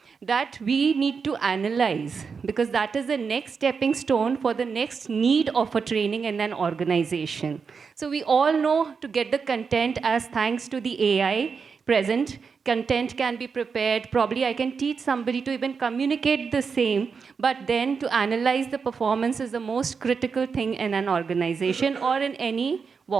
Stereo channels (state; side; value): quieter; left; 5.6 dB